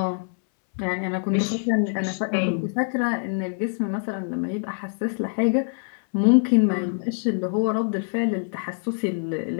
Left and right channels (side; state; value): right; silent; 62 dB below the other